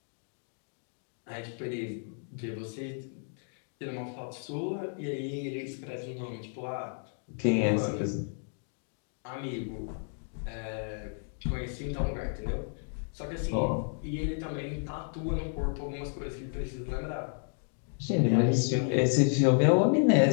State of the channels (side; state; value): right; silent; 57 dB below the other